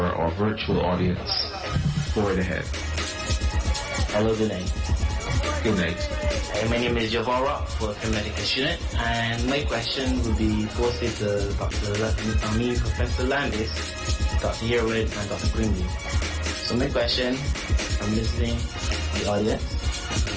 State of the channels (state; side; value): identical; both; correlation 1.00